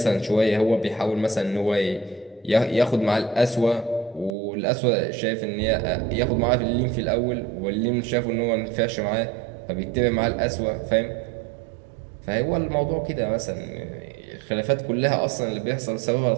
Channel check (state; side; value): drops out; left; at 4.3 s